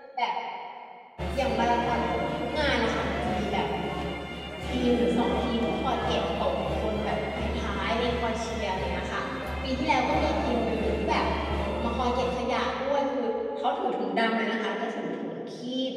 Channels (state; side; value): identical; both; correlation 1.00